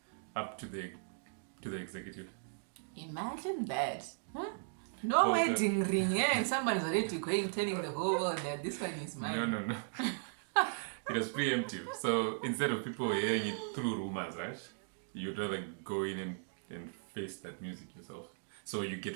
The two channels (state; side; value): silent; left; digital silence